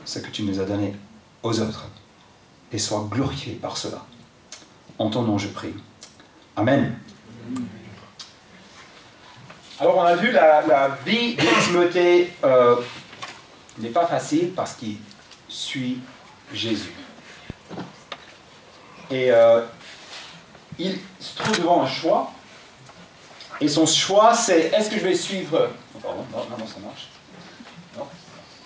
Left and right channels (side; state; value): both; identical; correlation 1.00